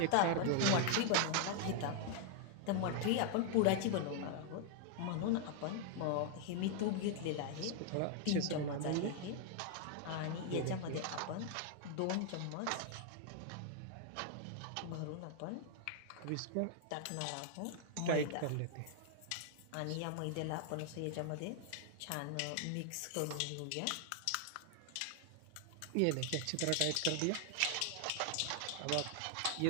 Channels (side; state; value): both; different; correlation 0.00